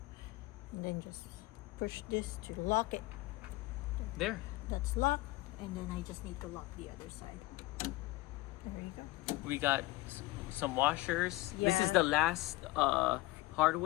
and then just push this to lock it. There. That's locked, and then I just need to lock the other side. There you go. We got some washers. This Yeah. is the last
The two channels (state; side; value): quieter; right; 19.4 dB